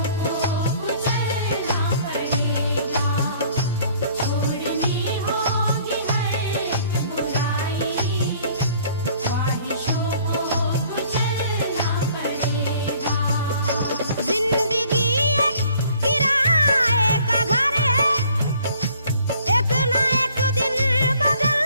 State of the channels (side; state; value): both; inverted; correlation -0.57